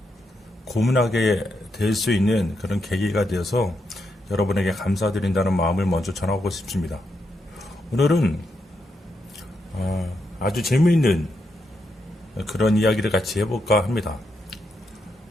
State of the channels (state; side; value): normal; both; correlation 0.82